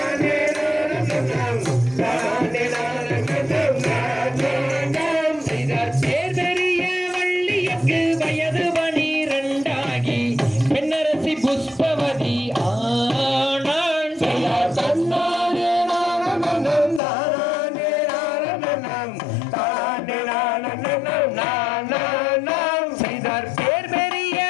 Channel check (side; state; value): right; drops out; at 17.0 s